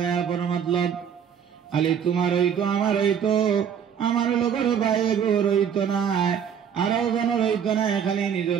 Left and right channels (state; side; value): quieter; left; 8.0 dB